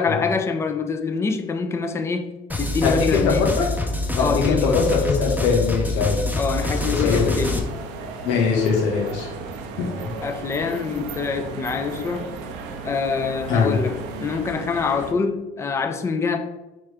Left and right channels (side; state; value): right; quieter; 3.9 dB